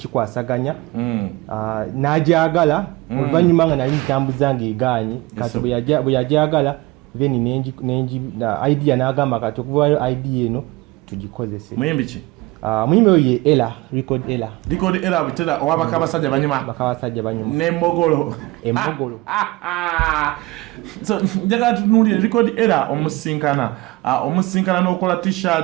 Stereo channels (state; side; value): quieter; left; 21.2 dB